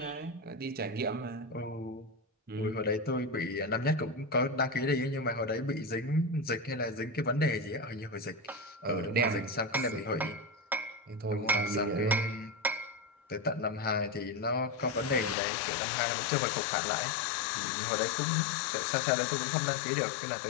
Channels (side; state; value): right; drops out; at 15.4 s